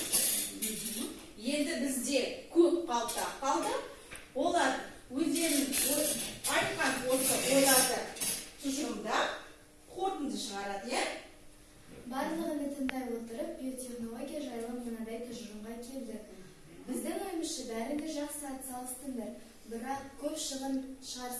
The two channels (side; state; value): both; identical; correlation 1.00